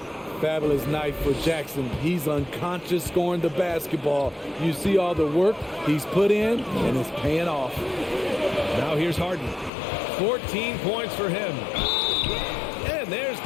Fabulous night for Jackson. He's unconscious scoring the basketball. You see all the work he's put in, and it's paying off. Now here's Harden. 14 points for him. And there's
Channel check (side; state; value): right; drops out; at 9.7 s